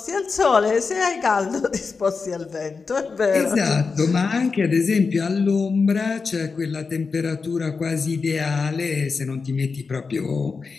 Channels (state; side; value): quieter; right; 4.8 dB